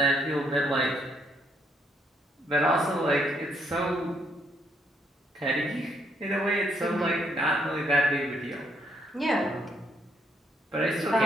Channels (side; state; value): both; normal; correlation 0.72